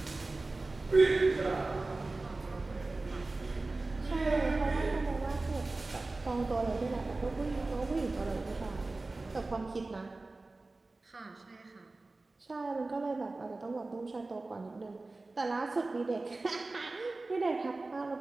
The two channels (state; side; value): quieter; left; 3.3 dB